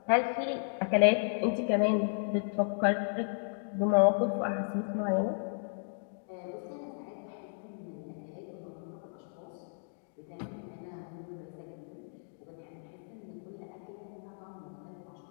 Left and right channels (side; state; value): right; silent; digital silence